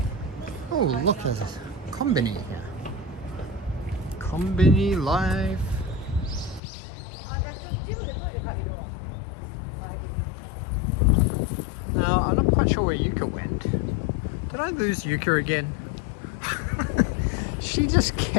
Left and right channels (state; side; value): drops out; right; at 6.6 s